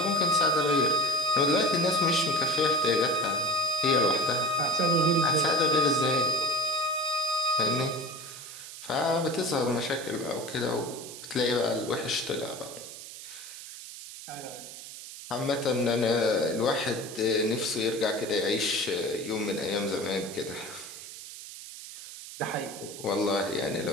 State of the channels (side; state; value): right; noise; hiss, 13 dB below the sound